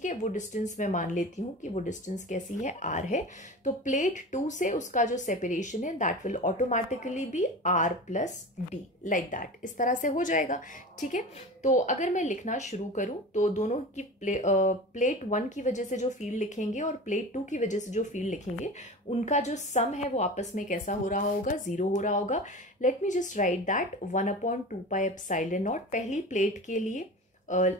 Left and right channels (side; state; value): both; normal; correlation 0.32